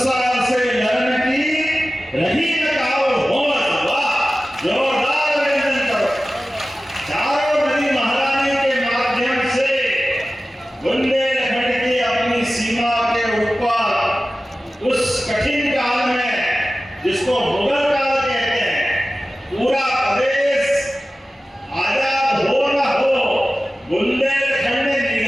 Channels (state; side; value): normal; both; correlation 0.96